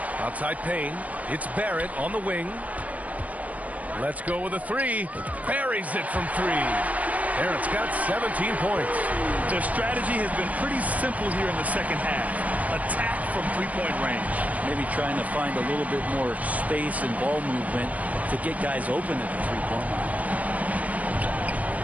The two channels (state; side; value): late; left; 0.072 ms